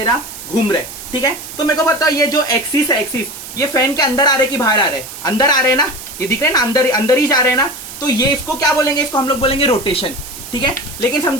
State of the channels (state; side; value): noise; right; hiss, 12 dB below the sound